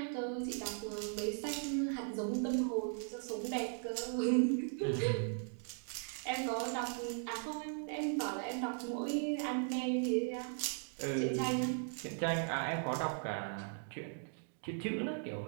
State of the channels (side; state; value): left; silent; 52 dB below the other